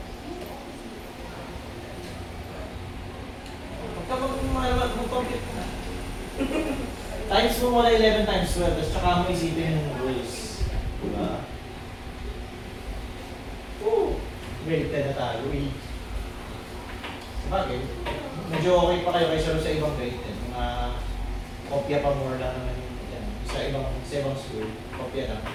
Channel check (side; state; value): both; identical; correlation 1.00